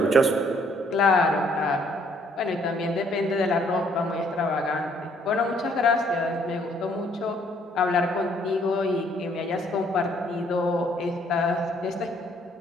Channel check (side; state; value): both; normal; correlation 0.65